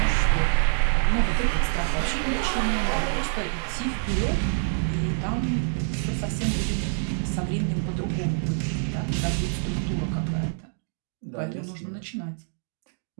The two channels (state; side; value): silent; left; digital silence